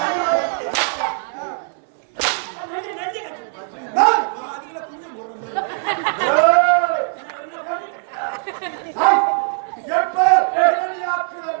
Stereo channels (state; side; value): silent; left; 65 dB below the other